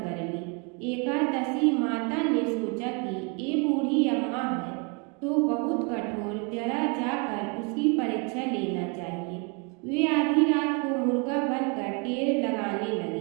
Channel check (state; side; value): quieter; left; 33.9 dB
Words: ली। एकादशी माता ने सोचा कि ये बूढ़ी अम्मा है तो बहुत कठोर, जरा जाकर उसकी परीक्षा लेना चाहिए। वे आधी रात को मुर्गा बनकर टेर लगाने